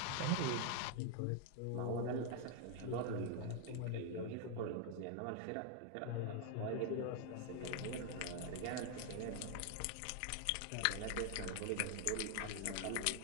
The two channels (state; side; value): different; both; correlation 0.00